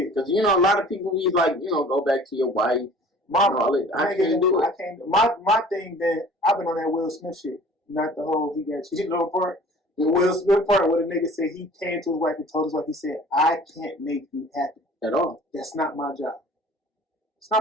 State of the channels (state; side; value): normal; both; correlation 0.48